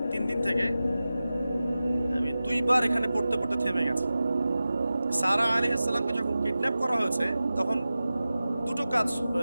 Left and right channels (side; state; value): both; inverted; correlation -0.95